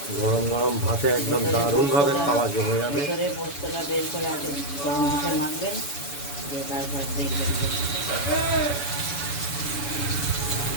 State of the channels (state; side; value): late; right; 7.0 ms